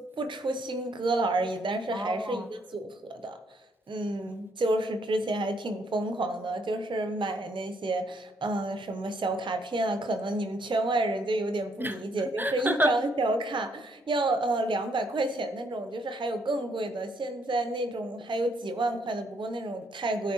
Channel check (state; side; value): normal; both; correlation 0.71